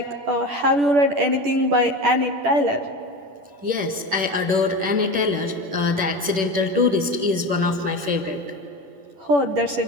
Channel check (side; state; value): left; late; 10 ms